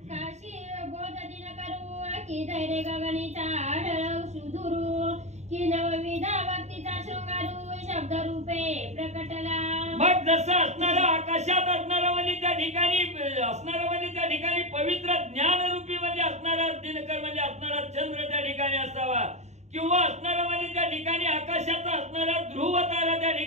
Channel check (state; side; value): late; left; 0.33 ms